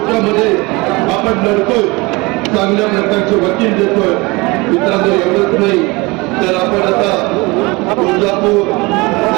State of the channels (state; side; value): quieter; left; 24.5 dB